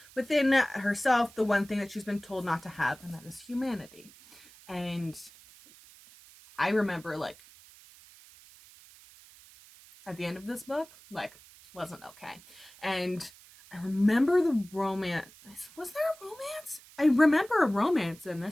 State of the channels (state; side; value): noise; right; hiss, 23 dB below the sound